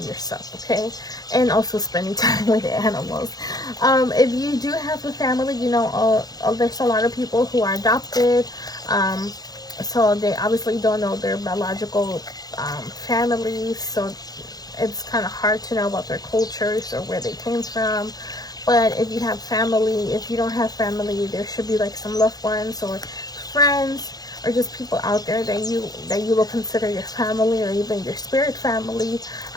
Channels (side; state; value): right; late; 0.19 ms